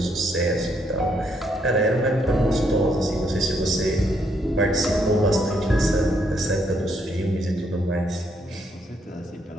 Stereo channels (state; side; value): normal; both; correlation 0.73